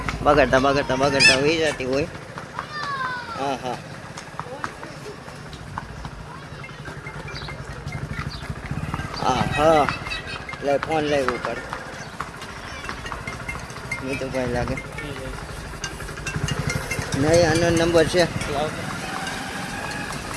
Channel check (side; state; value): both; identical; correlation 1.00